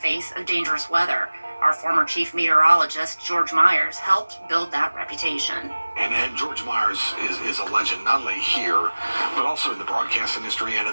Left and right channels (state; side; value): inverted; both; correlation -1.00